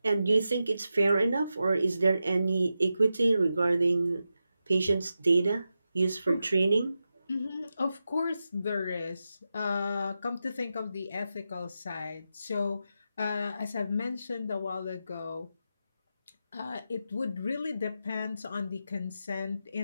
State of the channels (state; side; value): inverted; both; correlation -0.89